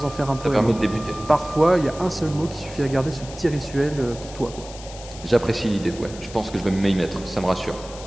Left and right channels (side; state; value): left; noise; hiss, 16 dB below the sound